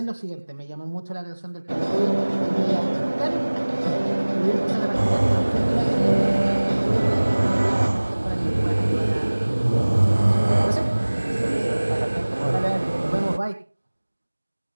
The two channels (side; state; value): both; inverted; correlation -1.00